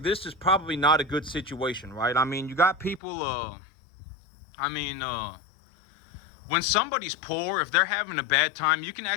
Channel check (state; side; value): drops out; right; at 3.0 s